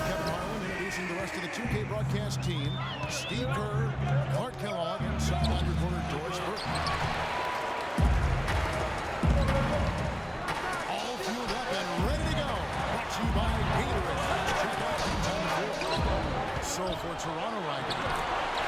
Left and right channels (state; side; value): identical; both; correlation 1.00